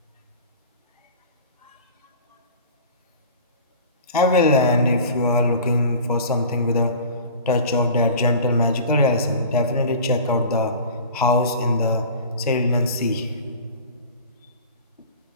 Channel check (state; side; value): inverted; both; correlation -0.40